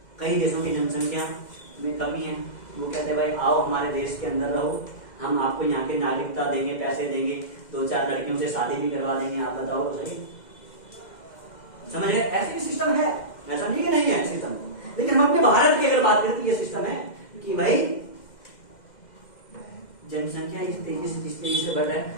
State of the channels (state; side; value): late; right; 2.1 ms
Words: कई देशों की जनसंख्या में कमी है, वो कहते हैं भाई आओ हमारे देश के अंदर रहो, हम आपको यहाँ की नागरिकता देंगे, पैसे देंगे, 2-4 लड़कियों से शादी भी करवा देंगे, आप बताओ तो सही। समझ गए, ऐसे सिस्टम है, ऐसा नहीं कि नहीं है सिस्टम। लेकिन हम अपने भारत की अगर बात करें तो ये सिस्टम है कि भाई जनसंख्या इस तेजी से बढ़ रहा